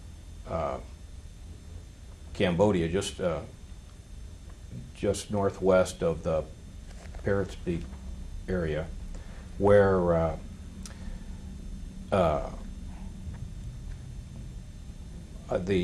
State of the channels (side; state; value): both; identical; correlation 1.00